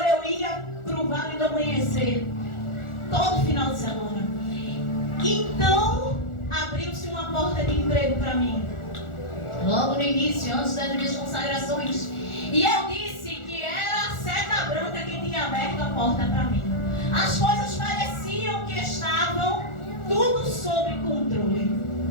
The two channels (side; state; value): right; late; 1.4 ms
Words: eu ia para o Vale do Amanhecer todo final de semana. Então abriu-se uma porta de emprego para mim, logo no início, antes das minhas consagrações. E eu disse que era a seta branca que tinha aberto a porta para mim. As coisas pareciam que estavam tudo sob controle.